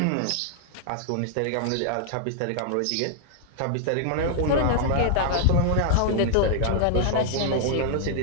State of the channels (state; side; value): different; both; correlation 0.00